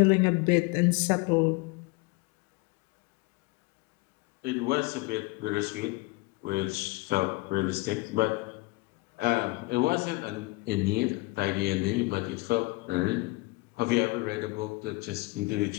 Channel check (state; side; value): quieter; right; 23.6 dB